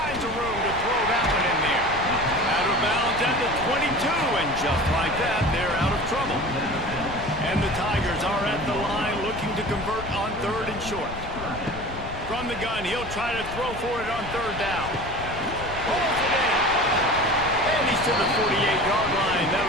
of room to throw that one in there. Out of bounds at the 22, and just like that, they're out of trouble. And the Tigers are at the line looking to convert on third and short. From the gun, he'll try to throw for it on third down. Pulls it in. And he's to the 48-yard line.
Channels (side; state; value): left; noise; rumble, 11 dB below the sound